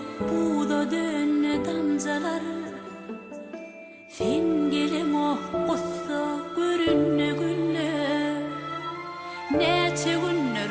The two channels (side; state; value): both; identical; correlation 1.00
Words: buğda dönne damcaları, sen gelin o kussa görünne gülle. Neçe günler